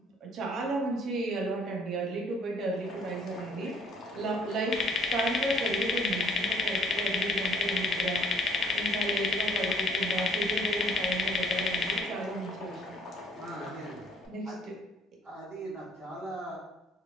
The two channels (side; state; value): both; normal; correlation 0.60